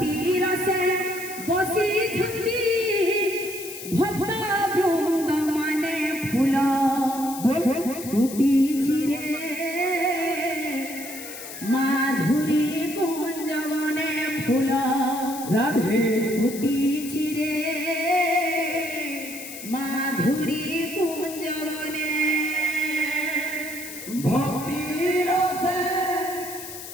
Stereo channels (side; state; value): left; noise; hiss, 11 dB below the sound